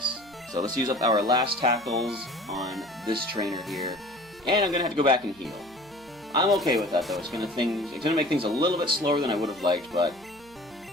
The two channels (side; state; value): right; noise; hum, 26 dB below the sound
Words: So let's use up our last tackles on this trainer here. And I'm going to have to go back and heal. I'm okay with that though. It's going to make things a little bit slower than I would have liked, but